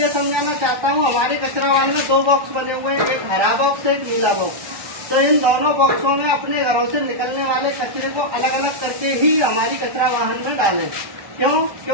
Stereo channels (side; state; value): left; late; 1.2 ms